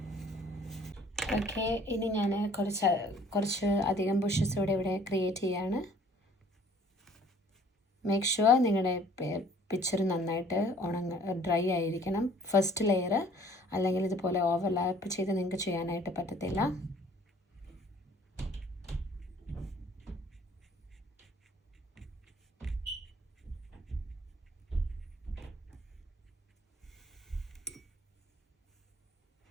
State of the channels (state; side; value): normal; both; correlation 0.55